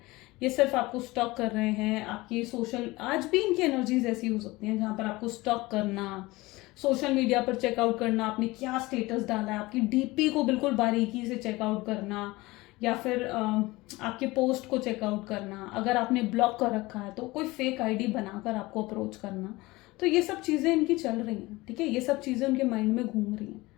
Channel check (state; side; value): quieter; right; 20.9 dB